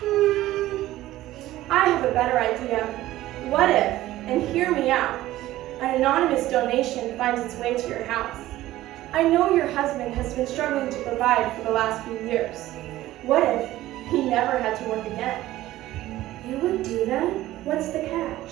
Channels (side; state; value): left; quieter; 15.4 dB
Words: I have a better idea. What if, and hear me out, an anonymous donation finds its way to your house? I know your husband has been struggling to provide for the last few years. What if he never had to work again? You would do that? What's the